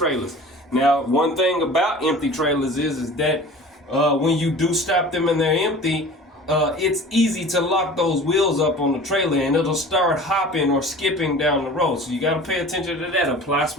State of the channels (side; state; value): both; normal; correlation 0.41